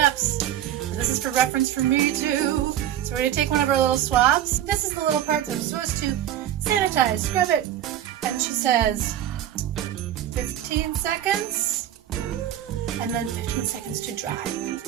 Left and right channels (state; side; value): quieter; left; 11.4 dB